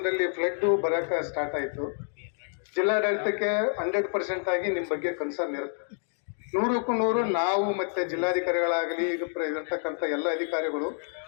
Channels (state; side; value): silent; right; 59 dB below the other